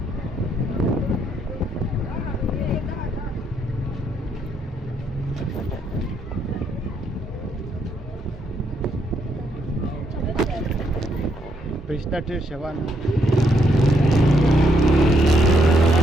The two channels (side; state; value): both; normal; correlation 0.74